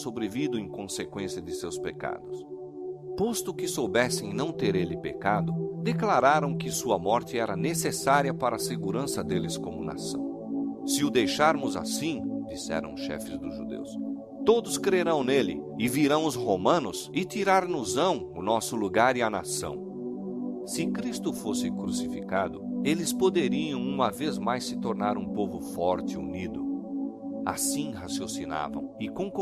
em consequência de seus pecados. Posto que soubessem não ter ele pecado, declararam que sua morte era necessária para a segurança deles como nação. Se o deixarmos assim, disseram os chefes dos judeus, todos crerão nele, e virão os romanos e tirar-nos-ão o nosso lugar e a nação. Se Cristo fosse crucificado, eles poderiam uma vez mais se tornar um povo forte e unido. Assim raciocinavam e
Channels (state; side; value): identical; both; correlation 1.00